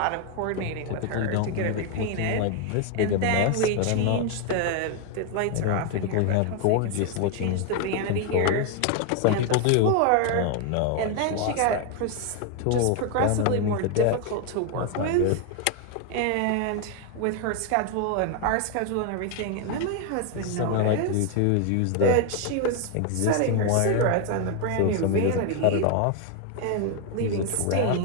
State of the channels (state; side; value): different; both; correlation 0.01